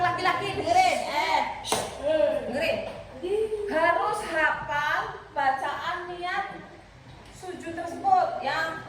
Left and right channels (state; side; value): identical; both; correlation 1.00